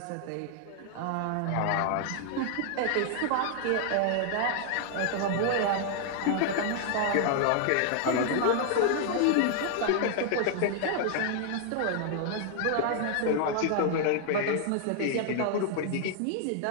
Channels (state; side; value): different; both; correlation 0.00